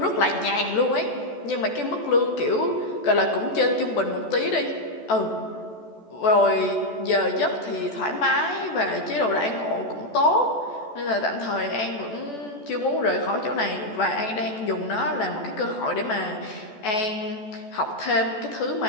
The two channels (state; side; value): late; right; 14 ms